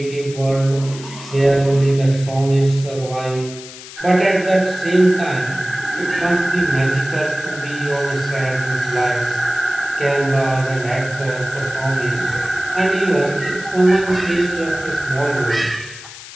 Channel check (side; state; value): left; noise; hiss, 15 dB below the sound